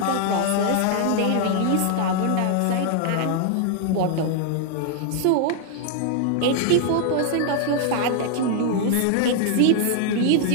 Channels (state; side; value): different; both; correlation 0.00